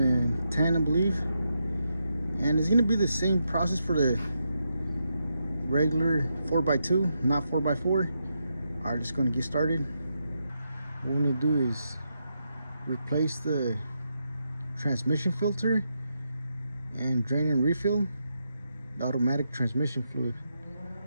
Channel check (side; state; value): both; inverted; correlation -0.83